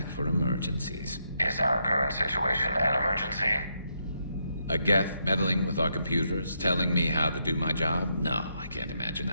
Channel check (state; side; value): inverted; both; correlation -0.79